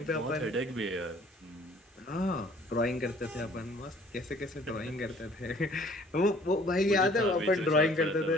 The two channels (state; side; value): normal; both; correlation 0.55